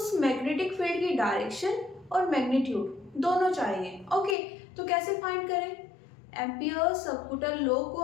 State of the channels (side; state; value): right; drops out; at 4.4 s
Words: मैग्नेटिक फील्ड की डायरेक्शन और मैग्नीट्यूड दोनों चाहिए। ओके, तो कैसे फाइंड करें? एम्पियर सबकूटल लॉ को